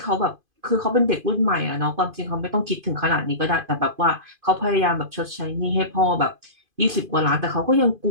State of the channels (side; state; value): left; late; 2.5 ms